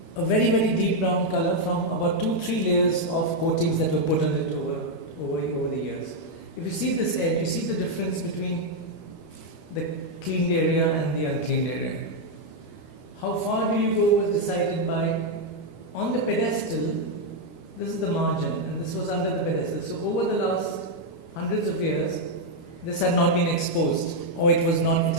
a very, very deep brown color from about 2-3 layers of coatings that were put on it over the years. If you see this edge, you see the difference between the cleaned area and the uncleaned area. How far do you go was decided by, on the pedestal, this is the margin, and this was under the pedestal. So over the last hundreds of years, this had not been exposed, or it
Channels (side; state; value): right; late; 13 ms